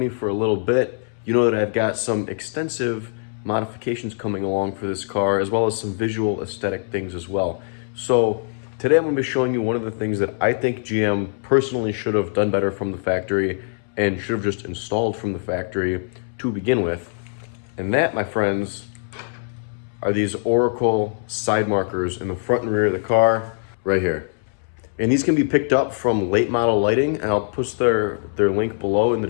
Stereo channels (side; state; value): right; silent; 63 dB below the other